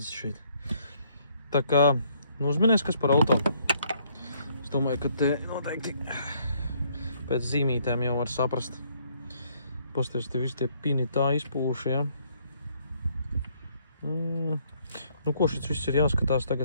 šeit. Tā kā, nu uzminies, kas par auto. Es domāju, ka te noteikti pēc zīmītēm jau var saprast. Pasties, te visi tie pini tā izpūši, jā. Nu, ko šis viss ir jāskatās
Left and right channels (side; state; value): both; inverted; correlation -0.67